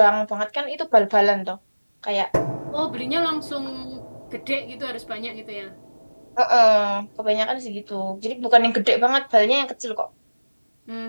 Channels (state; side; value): inverted; both; correlation -1.00